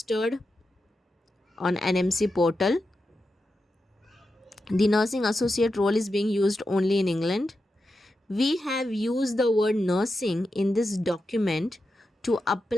on NMC portal. The nursing associate role is being used only in England. We have used the word nursing in this document to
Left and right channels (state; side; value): normal; both; correlation 0.89